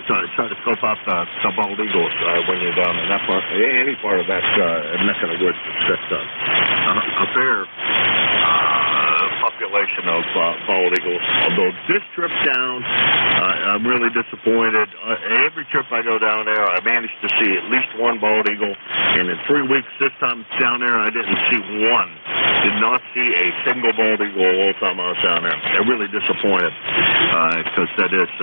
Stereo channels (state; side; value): inverted; both; correlation -1.00